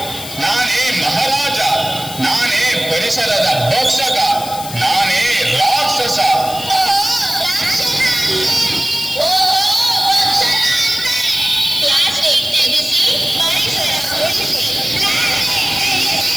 ನಾನೇ ಮಹಾರಾಜ, ನಾನೇ ಪರಿಸರದ ಭಕ್ಷಕ, ನಾನೇ ರಾಕ್ಷಸ.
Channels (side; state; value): left; noise; hiss, 11 dB below the sound